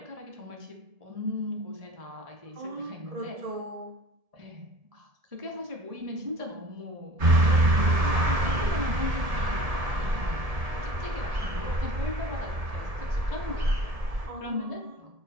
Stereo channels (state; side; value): late; left; 1.7 ms